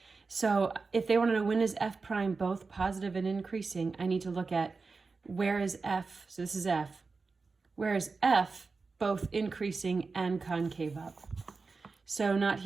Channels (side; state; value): left; quieter; 4.3 dB